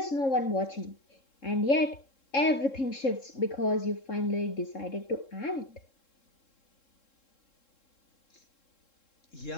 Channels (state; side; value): late; right; 3.7 ms